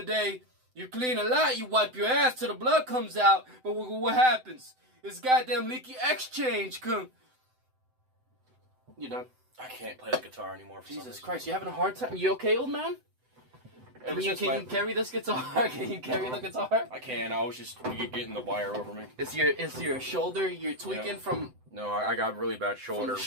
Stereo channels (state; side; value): late; left; 7.9 ms